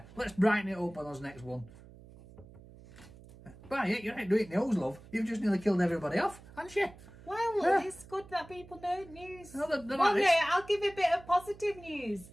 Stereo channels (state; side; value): noise; right; hum, 20 dB below the sound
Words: brighten it up on us next one. Well, you ain't doing news, love. You've just nearly killed everybody off, haven't you? Well, it's good that people know news. No, I'll give a bit of positive news.